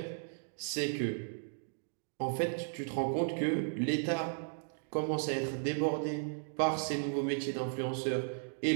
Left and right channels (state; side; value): silent; left; digital silence